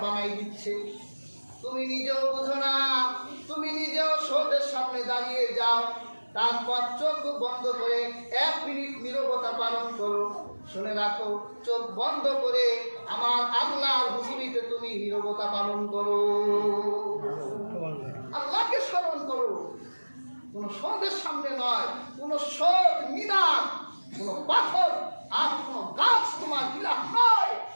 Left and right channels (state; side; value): inverted; both; correlation -1.00